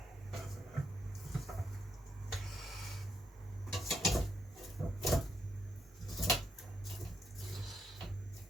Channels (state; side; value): normal; both; correlation 0.79